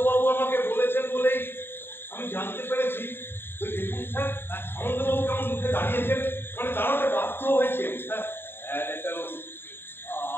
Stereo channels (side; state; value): right; late; 0.11 ms